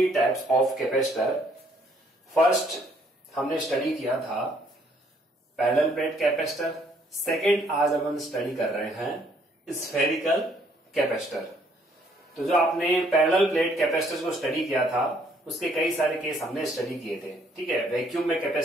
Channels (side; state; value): both; normal; correlation 0.66